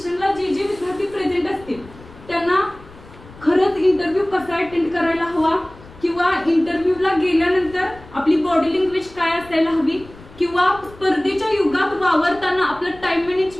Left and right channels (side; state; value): left; noise; rumble, 21 dB below the sound